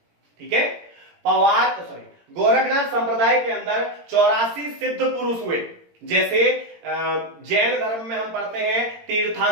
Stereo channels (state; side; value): late; left; 17 ms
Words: ठीक है, गोरखनाथ संप्रदाय के अंदर 84 सिद्ध पुरुष हुए। जैसे जैन धर्म में हम पढ़ते हैं